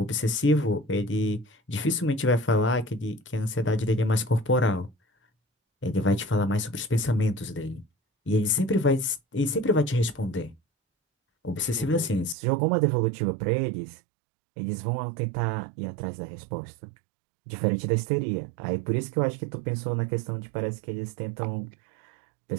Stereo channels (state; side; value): drops out; left; at 12.4 s